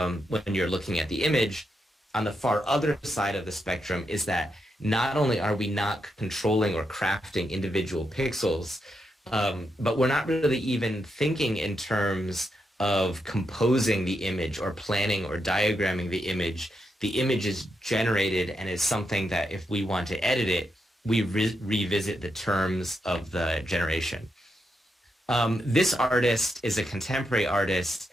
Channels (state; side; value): normal; both; correlation 0.83